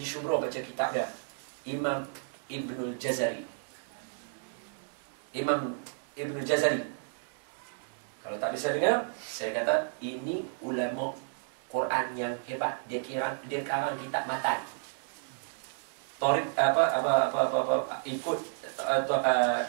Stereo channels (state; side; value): silent; left; digital silence